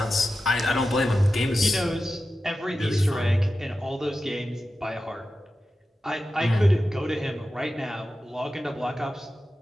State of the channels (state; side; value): normal; both; correlation 0.92